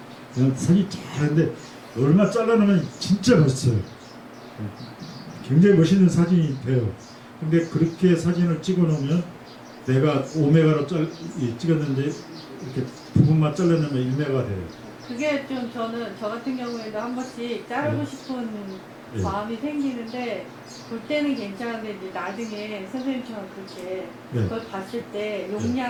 그냥 사진 잘하는데 얼마 잘라놓으면 진짜 멋있어요. 굉장히 멋있는 사진이 돼요. 근데 그렇게 사진을 찍어놓으면 내가 5메가로 찍었는데 이렇게 부분만 잘라놓으면 1메가 돼요. 그게 좀 저는 저 같은 경우에도 한 번씩 자르고 싶은 마음이 생기는데 볼 때는 괜찮은데 이제 나중에 선생님처럼 그렇게 그걸 봤을 때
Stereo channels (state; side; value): identical; both; correlation 1.00